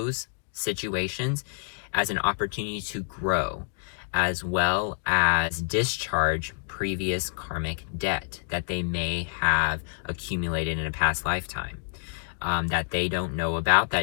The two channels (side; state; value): right; silent; 59 dB below the other